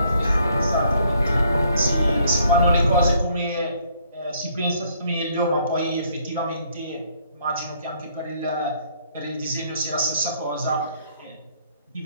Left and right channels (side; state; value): both; inverted; correlation -0.66